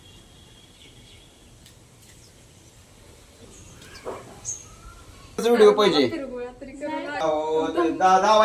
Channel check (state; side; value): identical; both; correlation 1.00